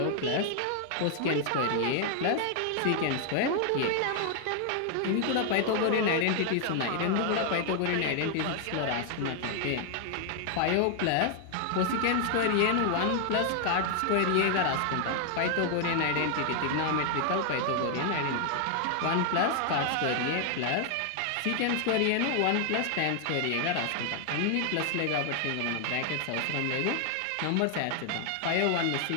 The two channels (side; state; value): both; different; correlation 0.00